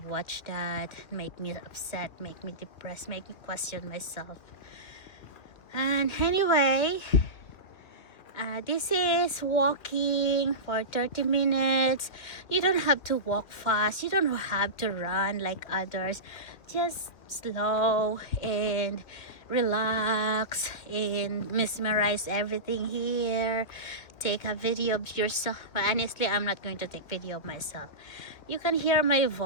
watch that, make me upset, make me depressed, make me question myself. And anyway, this is walking for 30 minutes. You don't have to walk fast, you don't have to run like others. Just slow and relax and mesmerize everything here. Take a video of yourself. But honestly, I'm not going to take video of myself. You can hear my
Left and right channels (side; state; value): right; late; 2.7 ms